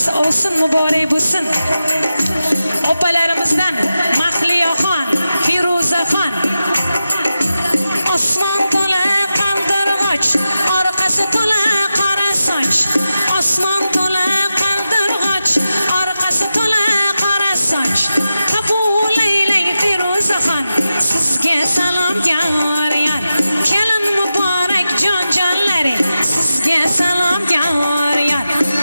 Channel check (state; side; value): inverted; both; correlation -0.91